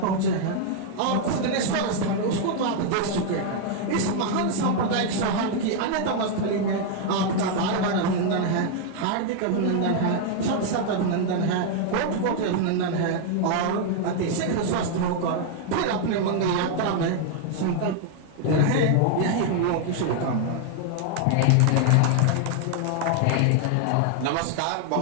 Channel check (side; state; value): both; different; correlation 0.00